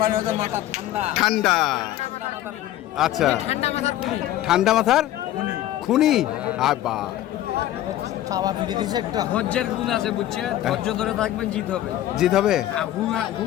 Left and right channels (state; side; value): quieter; right; 13.5 dB